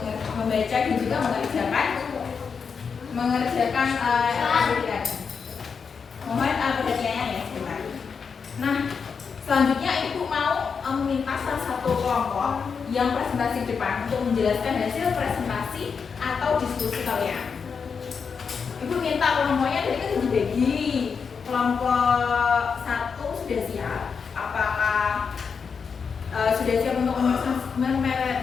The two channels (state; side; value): quieter; right; 5.9 dB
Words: membaca dan juga mengerjakan aktivitas. Mohon perhatiannya ya sebentar. Nah, selanjutnya ibu mau meminta salah satu kelompok yang presentasi depan untuk menjelaskan hasil presentasi atau diskusi kalian. Ibu minta kelompoknya tadi kan dibagi. Kelompok 1 sudah siap. Apakah sudah siap untuk